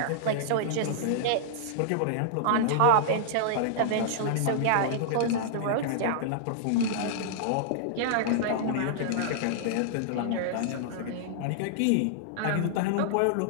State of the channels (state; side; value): different; both; correlation -0.01